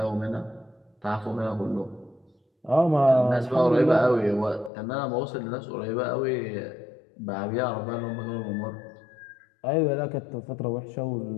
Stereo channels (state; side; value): drops out; right; at 4.7 s